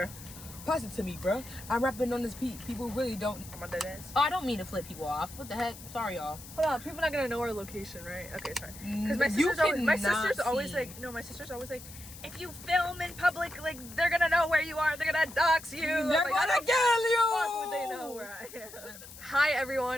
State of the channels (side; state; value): left; noise; hiss, 16 dB below the sound